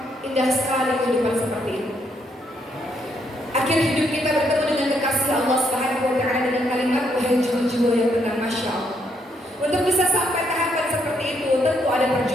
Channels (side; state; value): both; normal; correlation 0.74